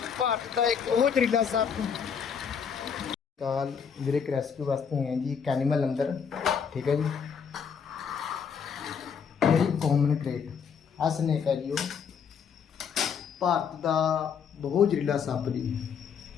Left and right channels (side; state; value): right; quieter; 6.9 dB